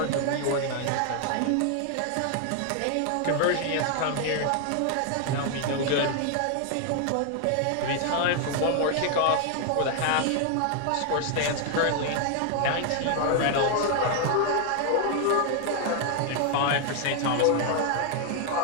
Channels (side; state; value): both; different; correlation 0.00